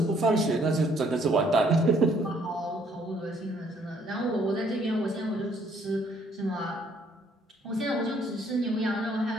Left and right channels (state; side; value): normal; both; correlation 0.65